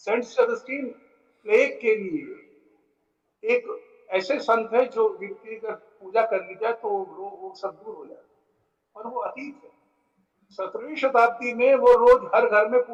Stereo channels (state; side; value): identical; both; correlation 1.00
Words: सेबेस्टियन प्लेग के लिए एक ऐसे संत है जो जिनकी अगर पूजा कर ली जाए तो वो सब दूर हो जाए, पर वो अतीत है। 17वीं शताब्दी में वो रोज हर घर में